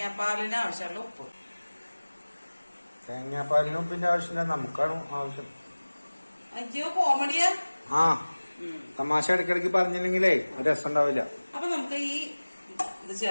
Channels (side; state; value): both; inverted; correlation -1.00